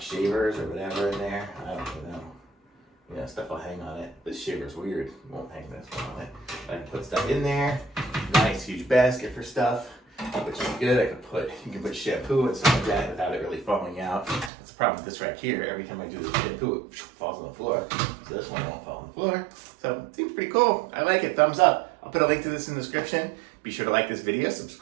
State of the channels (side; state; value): left; drops out; at 14.5 s